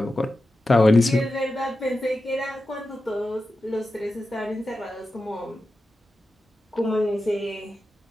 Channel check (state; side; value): normal; both; correlation 0.92